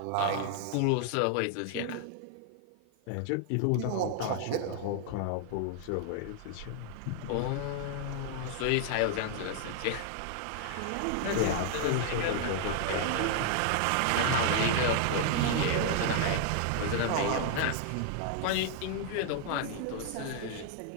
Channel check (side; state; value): both; different; correlation 0.00